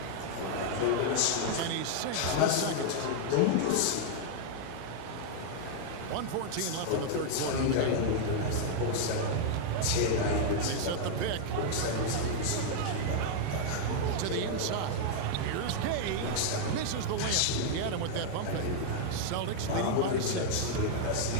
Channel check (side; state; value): both; different; correlation 0.00